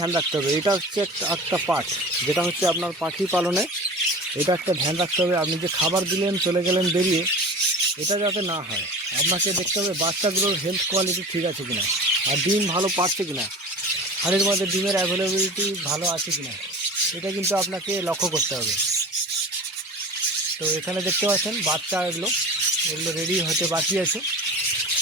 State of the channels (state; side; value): normal; both; correlation 0.36